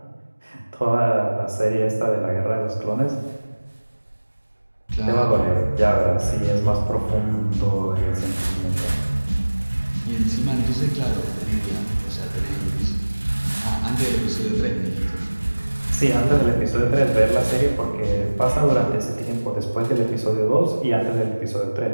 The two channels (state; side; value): inverted; both; correlation -1.00